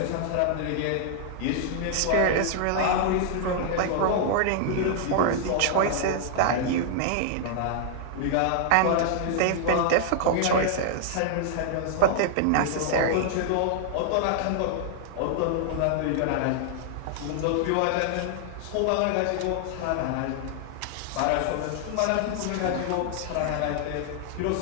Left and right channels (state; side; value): different; both; correlation -0.01